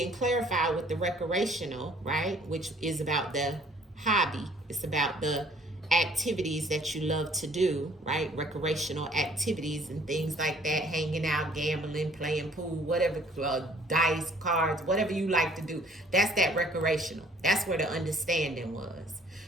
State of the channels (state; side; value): normal; both; correlation 0.57